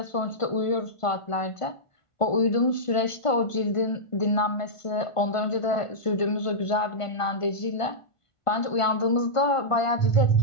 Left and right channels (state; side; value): late; right; 1.5 ms